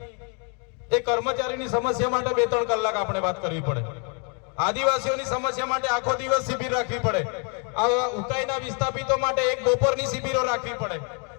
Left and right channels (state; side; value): quieter; right; 37.8 dB